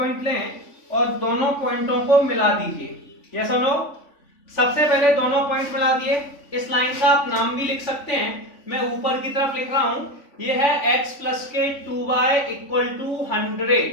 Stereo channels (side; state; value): right; late; 3.5 ms